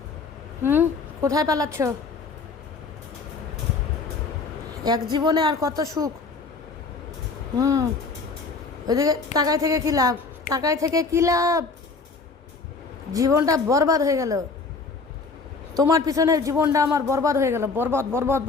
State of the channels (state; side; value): quieter; right; 4.3 dB